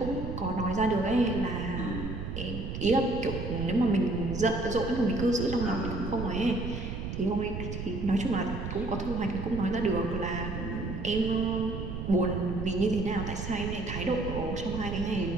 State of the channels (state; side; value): noise; right; rumble, 5 dB below the sound